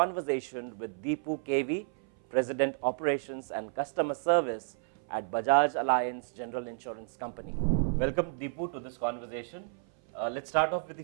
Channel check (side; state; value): left; silent; 57 dB below the other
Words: with Dipu KV, president operations and customer service at Bajaj Allianz General Insurance Company. Welcome Dipu to this conversation. Let's start off with